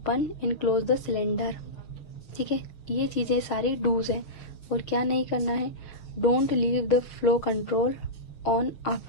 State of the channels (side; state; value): right; late; 6.9 ms